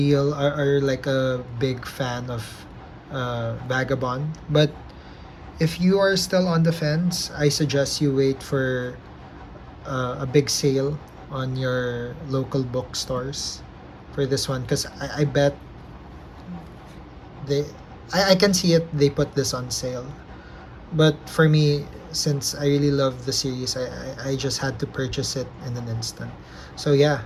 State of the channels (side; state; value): both; identical; correlation 1.00